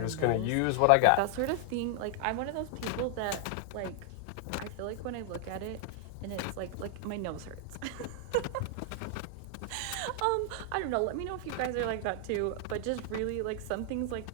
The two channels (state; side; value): different; both; correlation 0.00